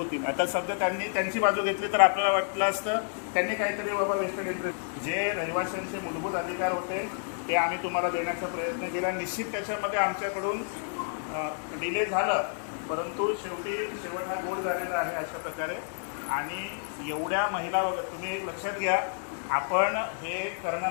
आता सध्या त्यांनी त्यांची बाजू घेतली तर आपल्याला वाटलं असतं त्यांनी काहीतरी बाबा वेस्टर्न इंटरेस्ट जे रहिवाशांचे मूलभूत अधिकार होते ते आम्ही तुम्हाला देण्याचा प्रयत्न केला. निश्चित त्याच्यामध्ये आमच्याकडून डिले झालं, परंतु शेवट हा गोड झालेला आहे अशा प्रकारे. आणि एवढ्या महिला वगैरे तुम्ही लक्षात घ्या, आपण हे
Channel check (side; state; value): right; silent; digital silence